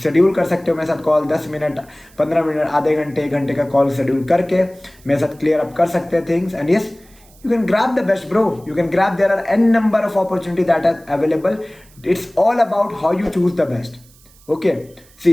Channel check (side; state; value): right; noise; hiss, 28 dB below the sound